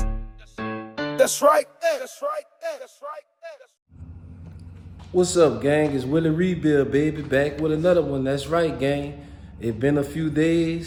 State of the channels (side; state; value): both; identical; correlation 1.00